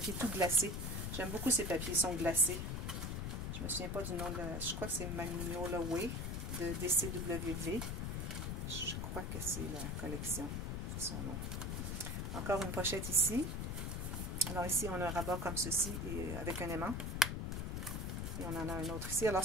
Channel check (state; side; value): noise; left; rumble, 2 dB below the sound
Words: tout glacé. J'aime beaucoup ces papiers, ils sont glacés. Je me souviens pas du nom de je crois que c'est Magnolia Way de DCWV. Je crois que c'est la collection, c'est son nom. Encore une pochette ici. Alors ici, on a un rabat comme ceci, et avec un aimant. Et on en a un autre ici. Alors